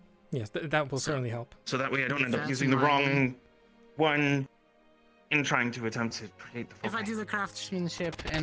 Yes, that will certainly help. So that way I don't end up That's using the my- wrong one in trying to attempt to create the If I foci. do the craftsmanship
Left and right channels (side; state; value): both; identical; correlation 1.00